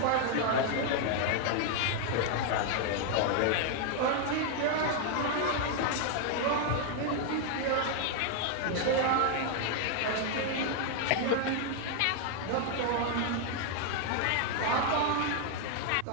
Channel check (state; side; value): different; both; correlation 0.00